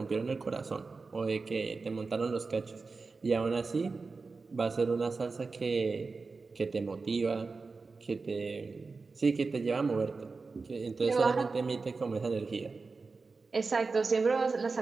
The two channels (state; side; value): quieter; left; 4.2 dB